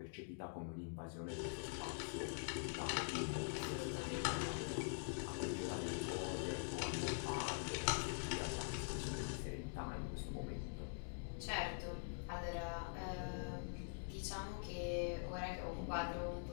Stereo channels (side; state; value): right; silent; digital silence